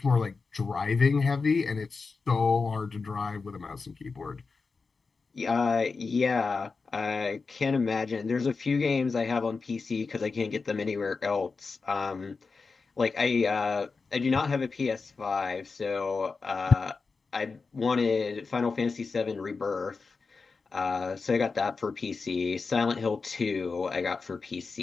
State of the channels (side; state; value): right; quieter; 4.5 dB